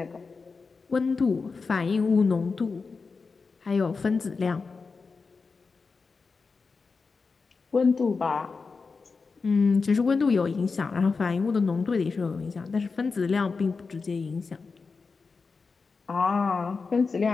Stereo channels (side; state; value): right; quieter; 4.6 dB